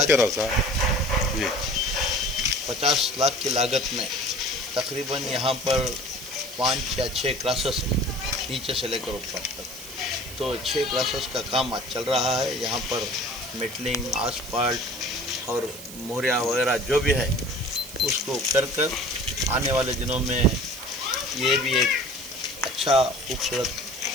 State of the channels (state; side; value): noise; right; hiss, 13 dB below the sound